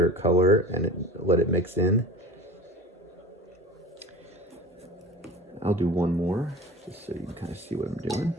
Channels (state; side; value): normal; both; correlation 0.39